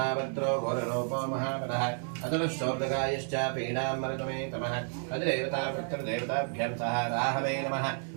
घोररूपो महाबलः अतुलश्चोर्दगायश्च पीडामृतमे तमः अधिदेवता पितृदेवताभ्यां सह राहवे नमः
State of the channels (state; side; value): silent; left; 57 dB below the other